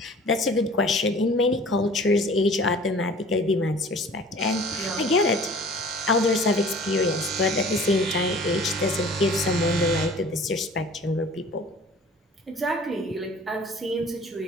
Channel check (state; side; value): normal; both; correlation 0.47